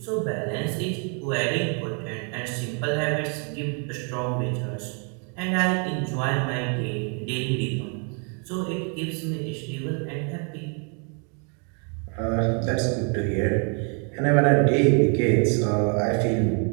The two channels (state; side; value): quieter; left; 38.7 dB